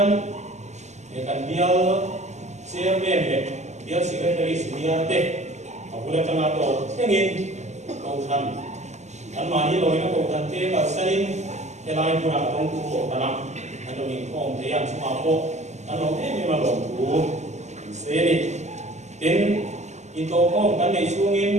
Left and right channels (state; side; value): late; left; 0.33 ms